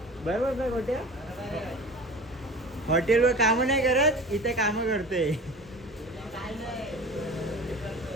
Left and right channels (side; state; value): both; normal; correlation 0.38